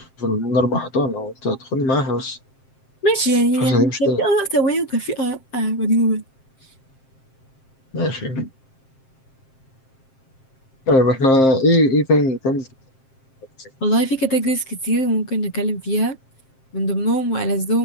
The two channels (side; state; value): right; late; 7.6 ms